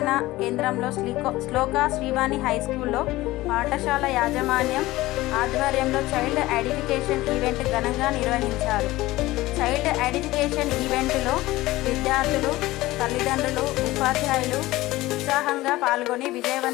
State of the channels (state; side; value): quieter; right; 18.2 dB